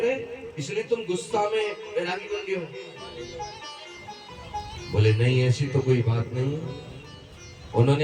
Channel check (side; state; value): both; identical; correlation 1.00